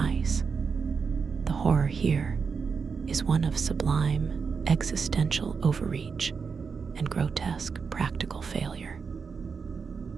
The horror here is one of sublime existential overreach and grotesque practical failure.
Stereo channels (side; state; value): left; quieter; 5.5 dB